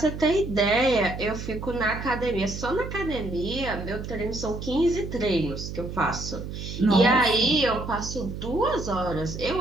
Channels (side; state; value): right; noise; hum, 8 dB below the sound